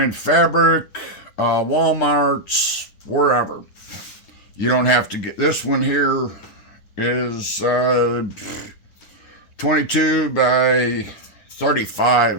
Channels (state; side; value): late; right; 10 ms